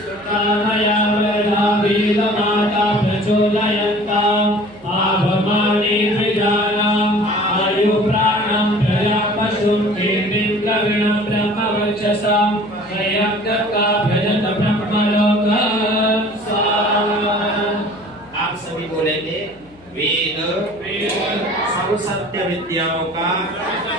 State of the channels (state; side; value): noise; left; hum, 27 dB below the sound